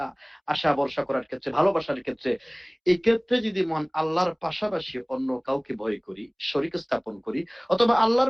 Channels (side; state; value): both; identical; correlation 1.00